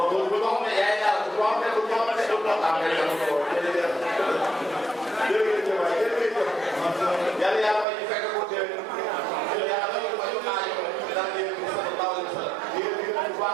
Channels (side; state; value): left; drops out; at 7.9 s